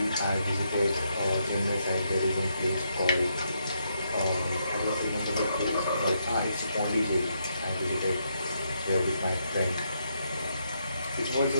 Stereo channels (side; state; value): both; inverted; correlation -0.79